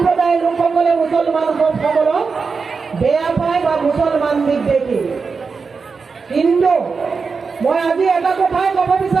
লোকসকলে মুছলমান সকলক বেয়া পায় বা মুছলমান বিদ্বেষী। কিন্তু মই আজি এটা কথাই ক'ব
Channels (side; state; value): left; quieter; 5.0 dB